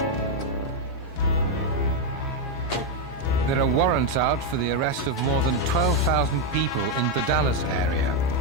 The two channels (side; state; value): both; normal; correlation 0.02